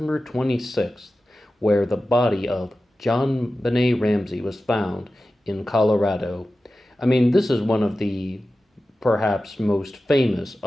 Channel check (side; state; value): both; normal; correlation 0.94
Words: 26th, where the body of Jonbenet Ramsey was found in Colorado. I mean, this is one of the perhaps most famous